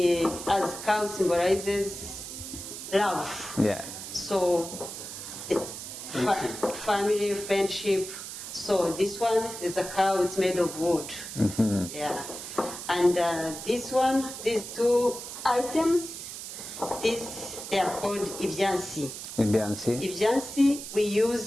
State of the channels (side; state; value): right; noise; hiss, 9 dB below the sound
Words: As cow symbolizes love. Yeah. So family, friendship. So this one is a cow. It's made of wood. Yeah. And this one, these two items, they are called ibyansi. Ibyansi, we